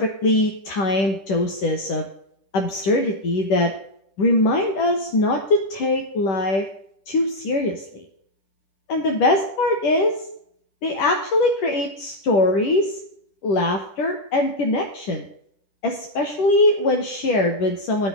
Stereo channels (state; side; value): late; right; 10 ms